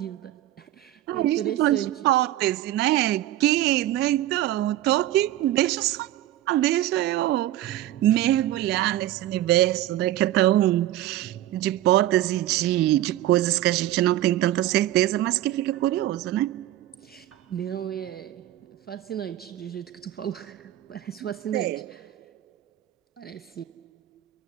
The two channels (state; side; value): quieter; left; 14.1 dB